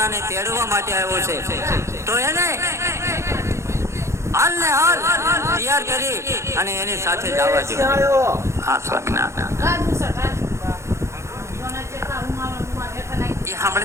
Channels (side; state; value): left; late; 0.14 ms